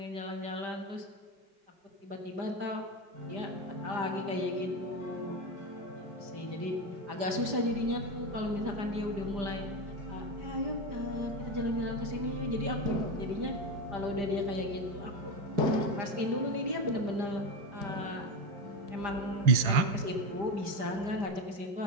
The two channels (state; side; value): late; left; 5.0 ms